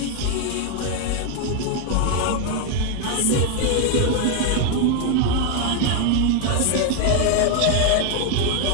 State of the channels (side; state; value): both; different; correlation 0.01